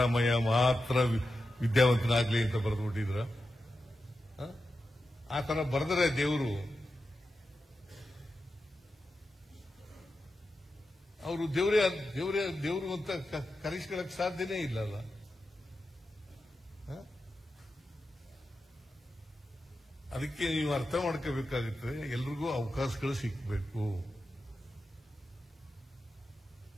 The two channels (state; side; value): normal; both; correlation 0.90